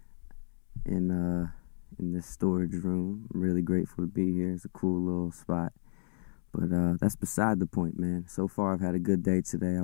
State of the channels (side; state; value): right; silent; digital silence